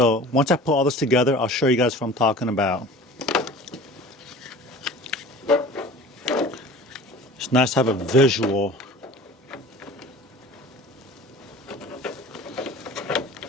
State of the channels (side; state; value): both; normal; correlation 0.41